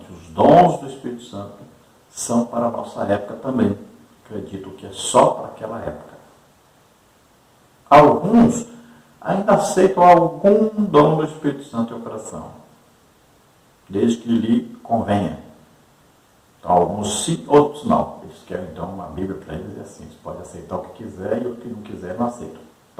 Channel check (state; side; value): identical; both; correlation 1.00